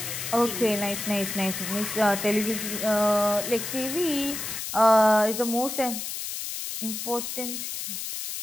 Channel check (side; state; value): left; noise; hiss, 5 dB below the sound